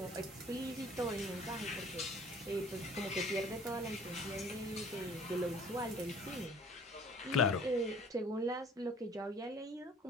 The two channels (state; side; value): normal; both; correlation 0.51